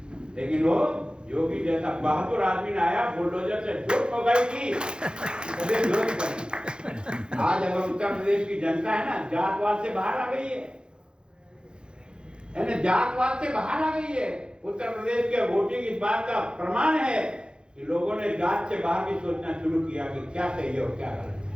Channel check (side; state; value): left; late; 0.050 ms